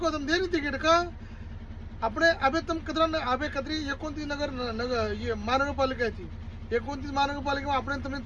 तुम देनी तिकीट का अपने अबे तुम कदरा अबे कदरी 29 नगर ये महानगरपालिका है थी 29 महानगरपालिका में अपने तुमने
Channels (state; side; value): identical; both; correlation 1.00